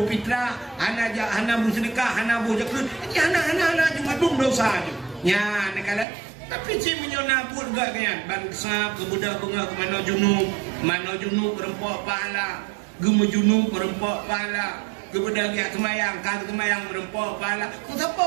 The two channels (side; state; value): left; drops out; at 6.1 s